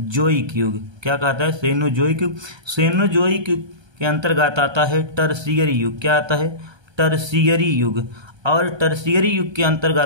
युग। क्या कहता है, सेनोजोइक युग। सेनोजोइक युग के अंतर्गत आता है टर्शियरी युग। क्या आता है, टर्शियरी युग। और टर्शियरी युग के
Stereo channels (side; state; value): left; late; 1.2 ms